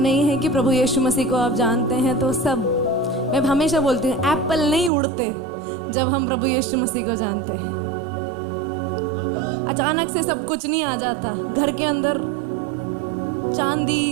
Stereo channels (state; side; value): drops out; left; at 4.9 s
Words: है कि प्रभु यीशु मसीह को आप जानते हैं तो सब, मैं हमेशा बोलती हूँ एप्पल नहीं उड़ते जब हम प्रभु यीशु मसीह को जानते हैं। अचानक से सब कुछ नहीं आ जाता, घर के अंदर